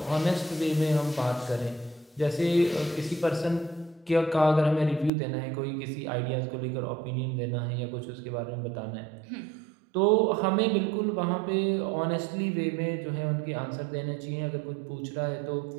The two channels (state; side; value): drops out; left; at 5.1 s